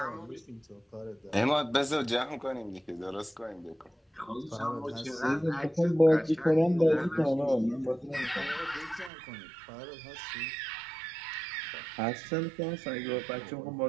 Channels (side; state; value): left; drops out; at 9.1 s